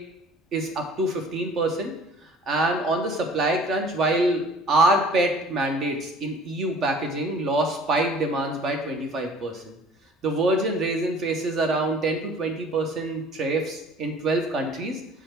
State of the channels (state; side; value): normal; both; correlation 0.49